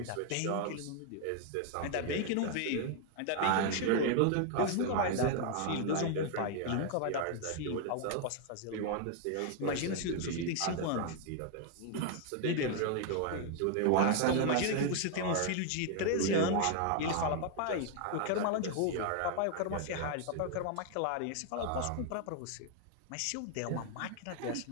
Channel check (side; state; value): both; different; correlation 0.00